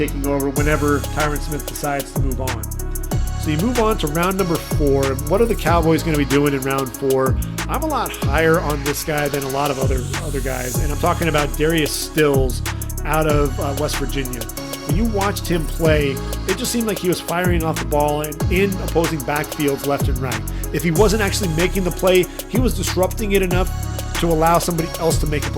over whenever Tyron Smith decides to move on. So you move on to round number 4. What are the Cowboys going to be doing in round 4? I'm a lot higher on this guy than a lot of other guys, and I'm talking about Darius Stills out of West Virginia. When you watched him play, it just seemed like he was firing off the ball and in opposing backfields left and right. If he wasn't actually making the play, he was disrupting it enough to allow somebody else to make a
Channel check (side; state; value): both; identical; correlation 1.00